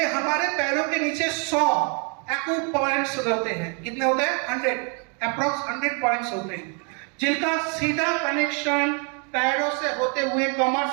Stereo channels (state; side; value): quieter; left; 37.5 dB